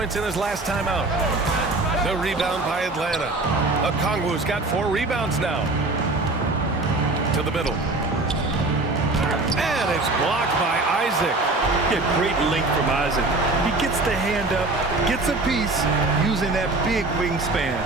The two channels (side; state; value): left; quieter; 3.1 dB